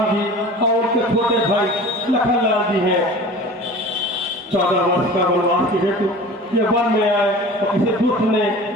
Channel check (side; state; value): both; normal; correlation 0.39